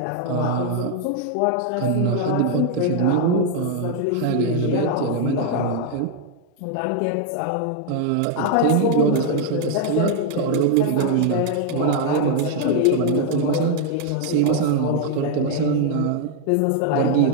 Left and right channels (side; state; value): both; different; correlation 0.00